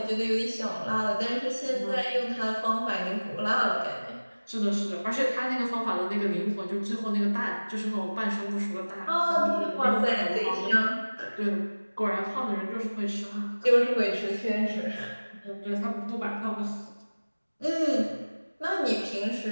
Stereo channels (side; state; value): both; inverted; correlation -1.00